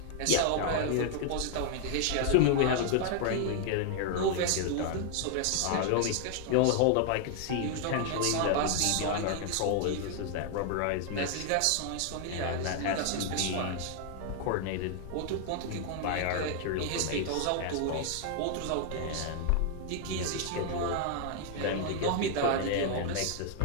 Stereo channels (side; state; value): both; different; correlation 0.00